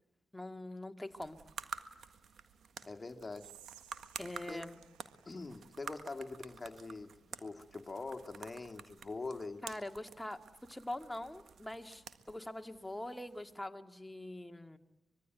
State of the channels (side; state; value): both; normal; correlation 0.91